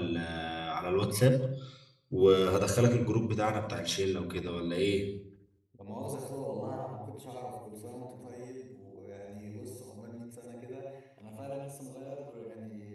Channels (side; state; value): both; identical; correlation 1.00